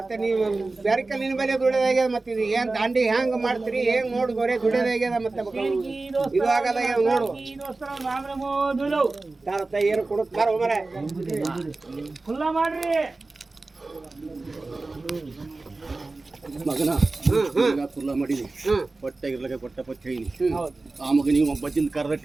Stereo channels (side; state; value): left; quieter; 3.4 dB